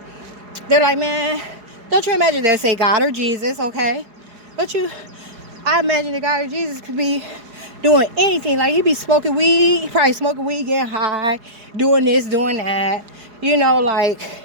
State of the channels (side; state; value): left; late; 4.8 ms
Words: they're like, man, don't you imagine they say God or Jesus, okay? I imagine the God or Jesus could be doing anything. Like, he be smoking weed, probably smoking weed, getting high, doing this, doing that. You know, like,